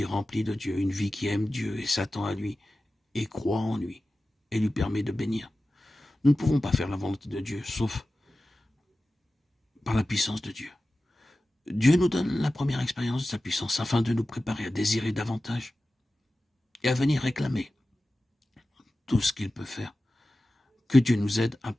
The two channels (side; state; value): both; normal; correlation 0.95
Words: remplie de Dieu, une vie qui aime Dieu et s'attend à lui, et croit en lui, et lui permet de bénir. Nous ne pouvons pas faire la volonté de Dieu, sauf par la puissance de Dieu. Dieu nous donne la première expérience de sa puissance afin de nous préparer à désirer davantage et à venir réclamer tout ce qu'il peut faire. Que Dieu nous aide à